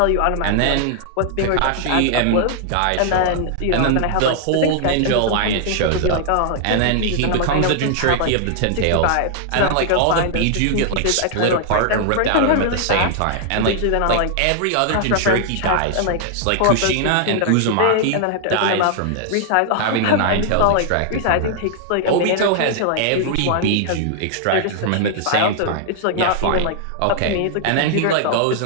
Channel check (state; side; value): different; both; correlation -0.01